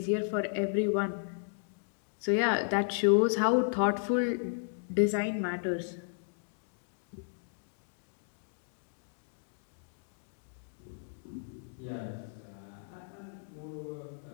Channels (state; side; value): silent; right; digital silence